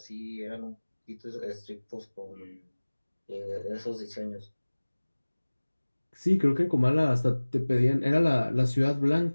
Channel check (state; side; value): inverted; both; correlation -1.00